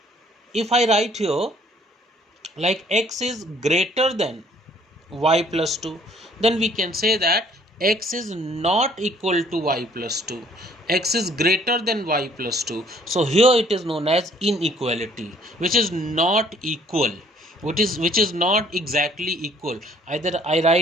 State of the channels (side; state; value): both; normal; correlation 0.60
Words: if I write here like x is greater than y plus 2, then we can say that x is not equal to y plus 2, x is greater than y plus 2. So here it is known as inequality, which is not equal, which is not exactly equal. Either I